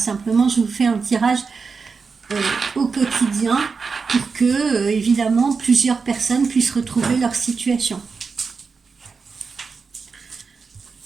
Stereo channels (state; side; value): quieter; left; 5.0 dB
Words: je vous fais un tirage au quotidien pour que, évidemment, plusieurs personnes puissent retrouver leur situation.